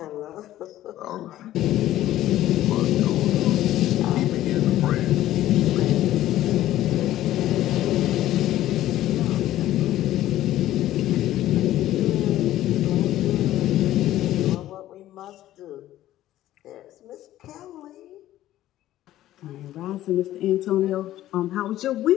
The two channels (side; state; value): right; quieter; 13.9 dB